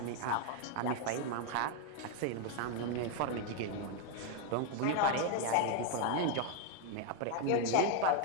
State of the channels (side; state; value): both; different; correlation 0.01